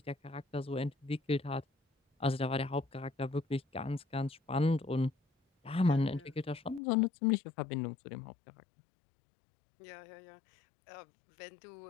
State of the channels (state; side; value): drops out; right; at 6.8 s